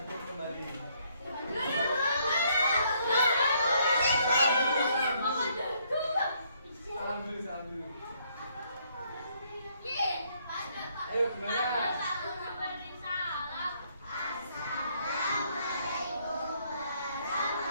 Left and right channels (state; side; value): inverted; both; correlation -0.69